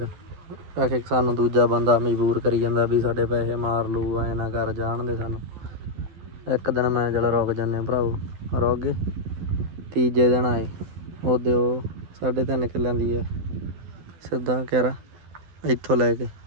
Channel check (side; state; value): left; late; 12 ms